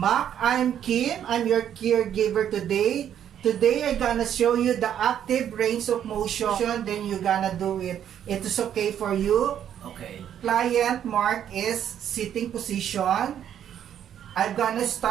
I'm Kim. I'm your caregiver today. Today, I'm gonna show you the active range of motion. Then you're gonna do it. It is okay for you. Okay. Client Mark is sitting position. I'm gonna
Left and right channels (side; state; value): left; quieter; 9.8 dB